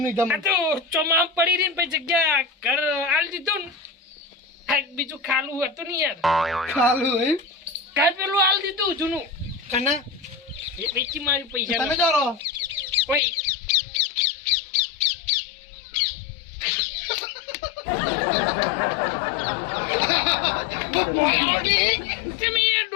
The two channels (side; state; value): right; drops out; at 13.2 s